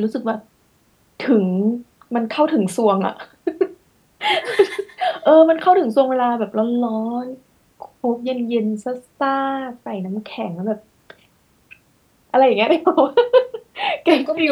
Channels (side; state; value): both; identical; correlation 1.00